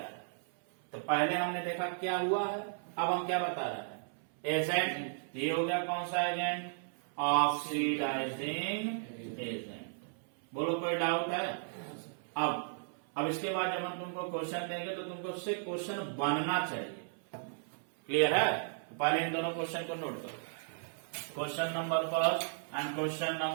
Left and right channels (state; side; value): silent; left; 54 dB below the other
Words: है। तो पहले हमने देखा क्या हुआ है, अब हम क्या बता रहे हैं, एजेंट। ये हो गया कौन सा एजेंट, ऑक्सीडाइजिंग एजेंट। बोलो कोई डाउट है? अब इसके बाद जब हम तुमको क्वेश्चन देंगे तो तुमको उससे क्वेश्चन बनना चाहिए। क्लियर है? पहले इन दोनों क्वेश्चन को नोट करो, क्वेश्चन नंबर फर्स्ट एंड क्वेश्चन